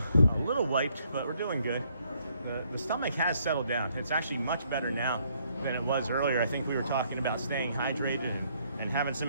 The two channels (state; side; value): inverted; both; correlation -0.69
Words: wiped, but we're doing good. The stomach has settled down. It's actually much better now than it was earlier. I think we were talking about staying hydrated and having